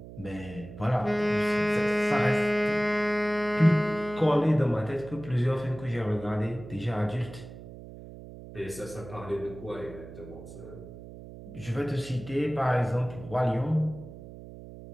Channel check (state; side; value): noise; right; hum, 15 dB below the sound